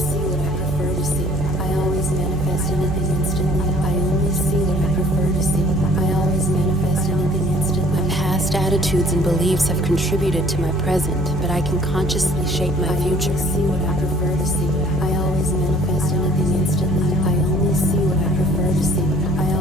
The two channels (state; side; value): noise; right; hum, 8 dB below the sound